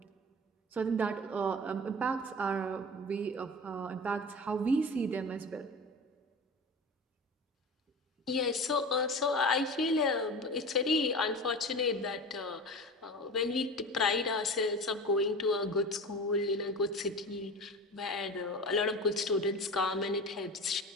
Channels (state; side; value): normal; both; correlation 0.33